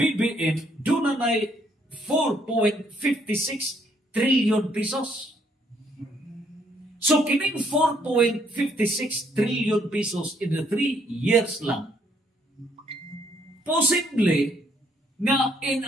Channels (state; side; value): normal; both; correlation 0.69